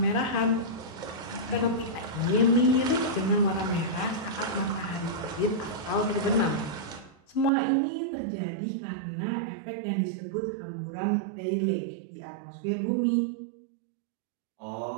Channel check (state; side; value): drops out; left; at 7.5 s